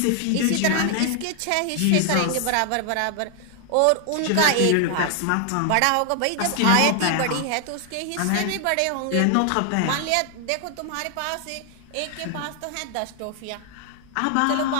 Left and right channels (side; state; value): both; different; correlation 0.00